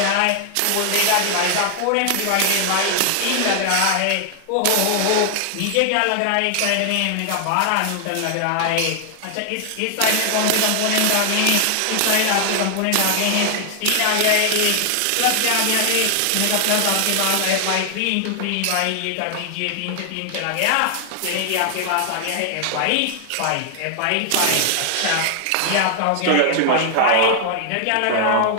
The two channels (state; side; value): different; both; correlation 0.00